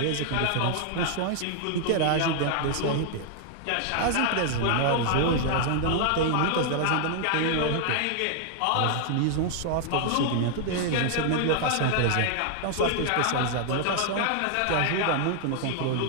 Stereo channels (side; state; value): both; different; correlation 0.00